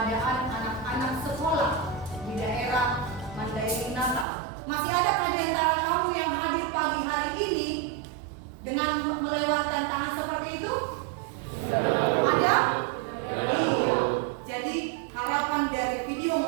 anak-anak sekolah di daerah Mandailing Natal. Masih adakah di antara kamu yang hadir pagi hari ini dengan melewatkan tantangan seperti itu? Ada? Iya. Jadi harapan dari video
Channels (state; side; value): drops out; left; at 4.2 s